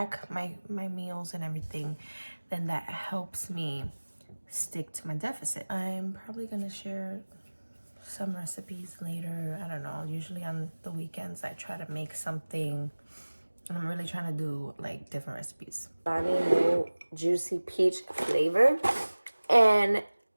my meals and everything, then that helps me stick to my deficit. I'm probably gonna share some recipes later. I don't know, usually on the weekends I try to make something, and I'm really trying to do like different recipes. New juicy peach flavor. And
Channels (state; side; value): inverted; both; correlation -1.00